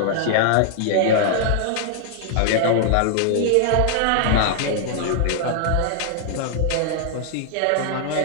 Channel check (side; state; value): both; different; correlation -0.01